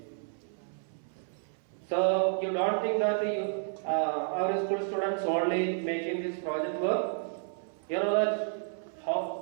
So you don't think that our school students only making this project work. You know that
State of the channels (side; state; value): left; silent; 57 dB below the other